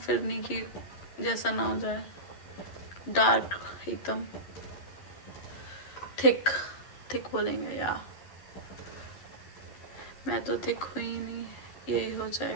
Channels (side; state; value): right; late; 11 ms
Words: नहीं कि जैसा ना हो जाए डार्क एकदम। थिक बोलेंगे, या मैं तो थिक हुई नहीं, यही हो